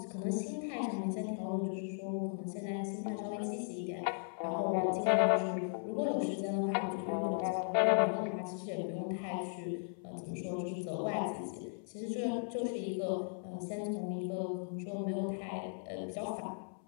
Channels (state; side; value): silent; right; 53 dB below the other